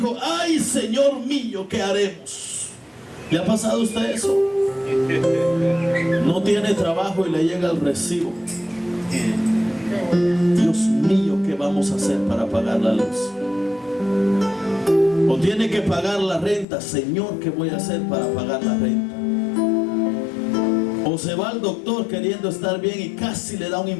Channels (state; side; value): drops out; right; at 16.7 s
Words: ay, señor mío, ¿qué haremos? ¿Le ha pasado a usted eso? No tiene trabajo y le llega el recibo. Dios mío, ¿qué vamos a hacer para pagar la luz? O tiene que pagar la renta. Señor, ¿qué voy a hacer para pagar la renta? O se va al doctor queriendo estar bien y casi le da un